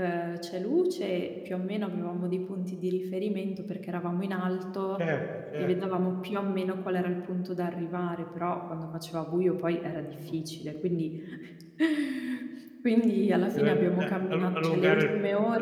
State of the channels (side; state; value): both; identical; correlation 1.00